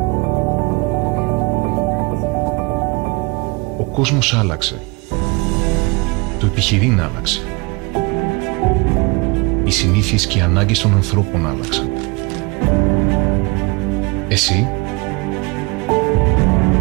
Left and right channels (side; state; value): left; quieter; 27.1 dB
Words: Ο κόσμος άλλαξε. Το επιχειρήν άλλαξε. Οι συνήθειες και οι ανάγκες των ανθρώπων άλλαξαν. Εσύ?